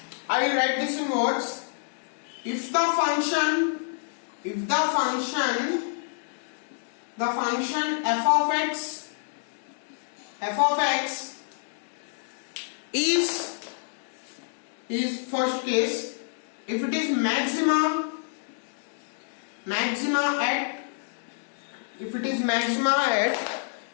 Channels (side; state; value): right; silent; digital silence